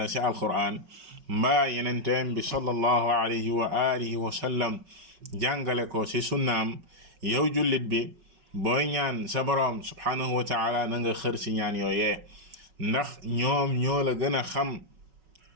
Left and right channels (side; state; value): left; late; 5.4 ms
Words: ci alquran mbaa yenenteem bi sallallahu alayhi wa alihi wa sallam jàngale ko ci sunnaam yow jullit bi booy ñaan sa borom subhanahu wa taala na nga xër ci ñaan yooyee ndax ñoom ñoo la gën a xam